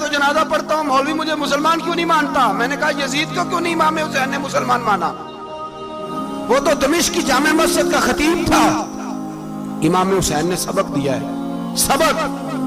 جنازہ پڑھتا ہوں، مولوی مجھے مسلمان کیوں نہیں مانتا؟ میں نے کہا یزید کو کیوں نہیں امام حسین نے مسلمان مانا؟ وہ تو دمشق کی جامع مسجد کا خطیب تھا. امام حسین نے سبق دیا ہے، سبق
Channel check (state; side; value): identical; both; correlation 1.00